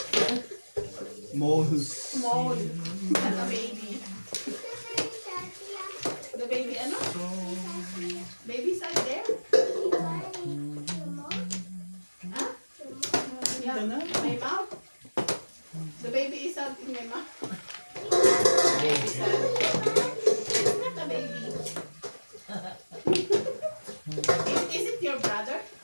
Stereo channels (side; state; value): both; inverted; correlation -1.00